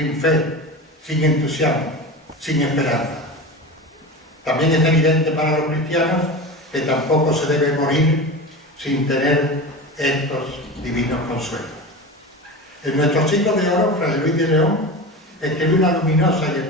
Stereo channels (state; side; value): normal; both; correlation 0.28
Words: fe, sin entusiasmo, sin esperanza. También es evidente para los cristianos que tampoco se debe morir sin tener estos divinos consuelos. En nuestro siglo de oro, Fray Luis de León escribió una luminosa y